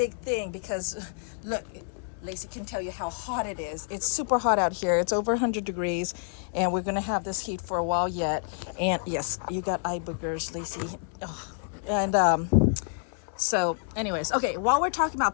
thing because look, Lacey can tell you how hot it is. It's super hot out here. It's over 100 degrees, and we're gonna have this heat for a while yet. And yes, you got eye boogers, Lacey. Oh. And so anyways, okay, while we're talking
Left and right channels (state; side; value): silent; right; digital silence